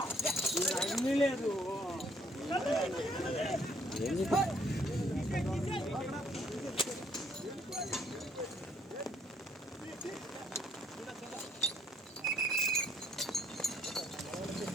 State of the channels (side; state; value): both; normal; correlation 0.66